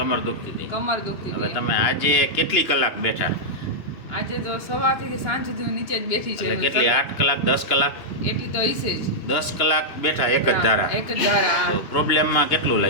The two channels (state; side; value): late; right; 2.8 ms